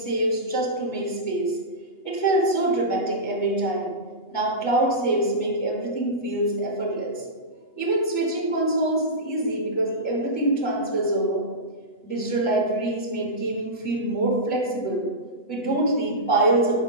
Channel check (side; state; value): right; late; 8.1 ms